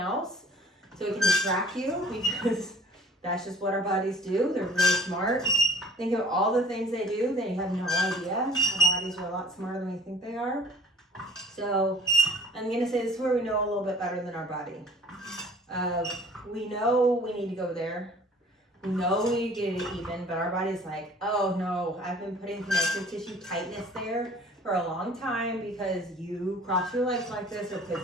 so it can distract you because that's just what our bodies do. They're really smart. Think of all the things they do. They have no idea. Our bodies are a lot smarter than we think they are. So I'm going to say this is where we know a little bit better than our body. We know we need to go there. We know we need to get it even, but our body's like, oh no, I've been putting connective tissue tightness there for a long time because you cross your legs like this or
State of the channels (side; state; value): both; normal; correlation 0.51